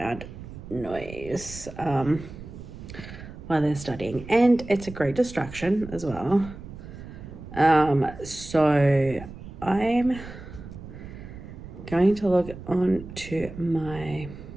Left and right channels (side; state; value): right; noise; rumble, 13 dB below the sound